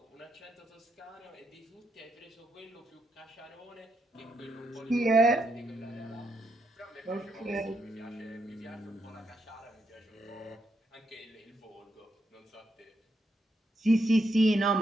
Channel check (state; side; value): normal; both; correlation 0.79